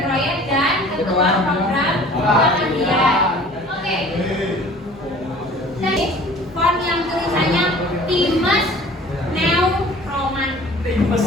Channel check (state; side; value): normal; both; correlation 0.48